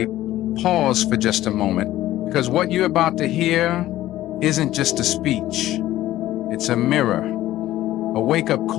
pause for just a moment, because what you're about to hear isn't just a speech. It's a mirror, a wake-up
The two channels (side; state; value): right; quieter; 14.6 dB